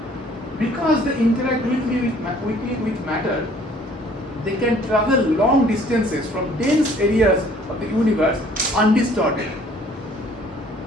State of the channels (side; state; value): both; normal; correlation 0.57